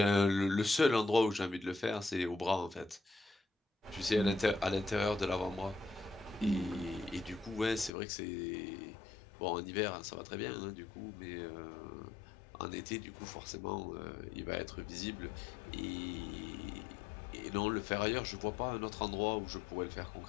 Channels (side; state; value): right; drops out; at 7.9 s